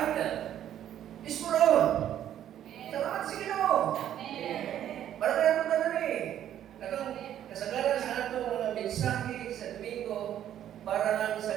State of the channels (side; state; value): left; quieter; 10.9 dB